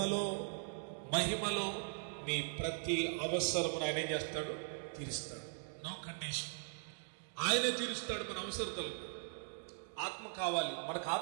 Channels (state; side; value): silent; left; digital silence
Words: మహిమలో మీ ప్రతి అవసరమును ఆయన ఏం చేస్తాడు? తీరుస్తాడు. No condition. ఆయనే తీరుస్తాడు మన అవసరతలు. ఆత్మ కావాలి, మనకు